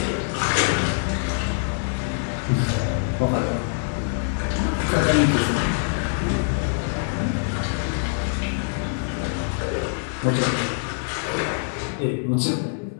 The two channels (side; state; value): right; silent; digital silence